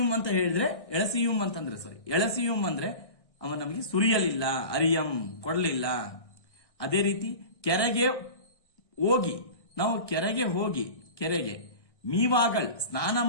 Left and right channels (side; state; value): right; late; 1.6 ms